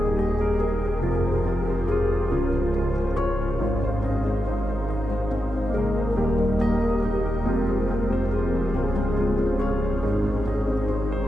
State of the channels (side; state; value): both; normal; correlation 0.88